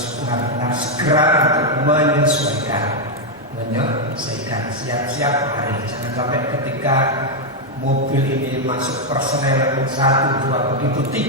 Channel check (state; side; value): normal; both; correlation 0.00